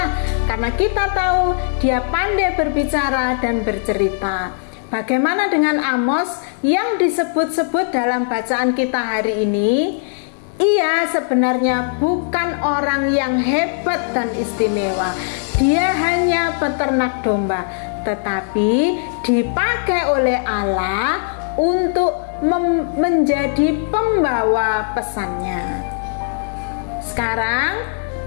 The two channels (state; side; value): silent; right; digital silence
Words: karena kita tahu dia pandai berbicara dan bercerita. Bagaimana dengan Amos yang disebut-sebut dalam bacaan kita hari ini? Ia sebenarnya bukan orang yang hebat dan istimewa. Dia hanya peternak domba, tetapi dipakai oleh Allah untuk menjadi pembawa pesannya. Sekarang